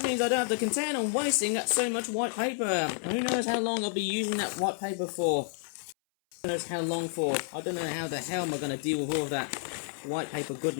means I don't have to contend on wasting so much white paper. Who knows how long I'll be using that white paper for? Who knows how long for? I don't know how the hell am I going to deal with all of that white paper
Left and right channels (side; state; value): right; silent; 58 dB below the other